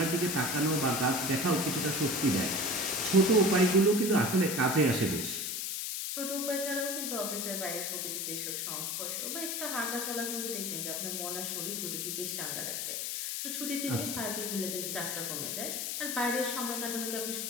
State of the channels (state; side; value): noise; left; hiss, 2 dB below the sound